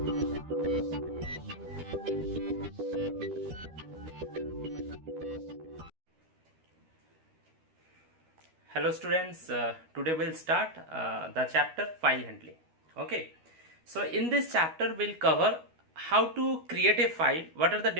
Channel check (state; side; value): late; left; 12 ms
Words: students, today we'll start the chapter file handling. Okay, so in this chapter we'll cover how to create a file, what are the